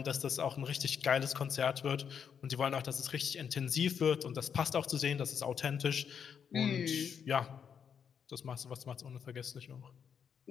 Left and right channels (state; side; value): quieter; right; 7.4 dB